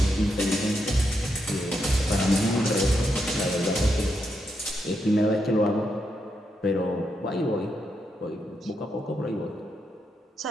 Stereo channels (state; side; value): normal; both; correlation 0.82